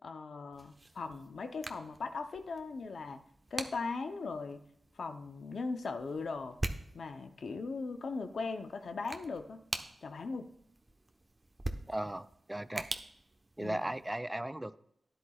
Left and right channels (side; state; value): both; normal; correlation 0.93